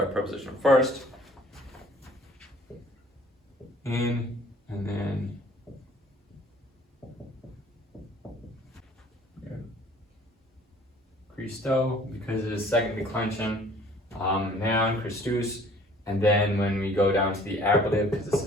preposition first. In, and then Christo, because it is second declension. Noun, Christus. And then when we go down to the ablative, because this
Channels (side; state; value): both; normal; correlation 0.53